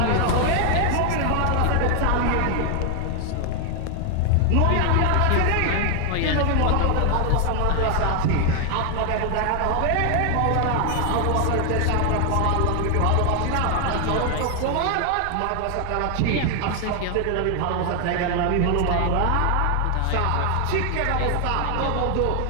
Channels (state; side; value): different; both; correlation 0.00